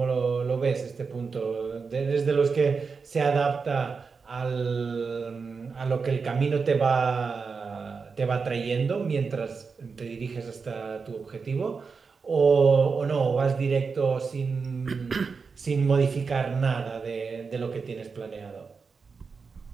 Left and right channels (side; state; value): left; quieter; 5.1 dB